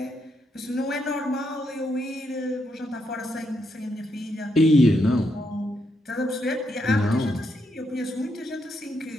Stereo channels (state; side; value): normal; both; correlation 0.79